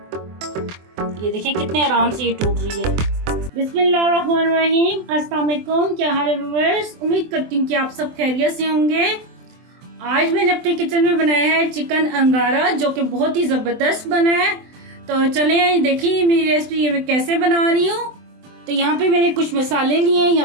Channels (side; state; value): left; late; 24 ms